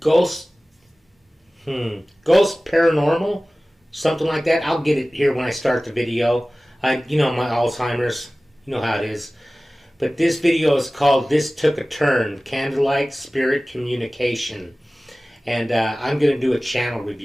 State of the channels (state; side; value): normal; both; correlation 0.98